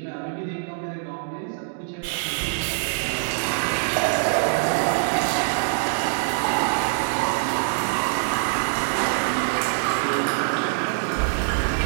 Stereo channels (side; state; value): left; silent; digital silence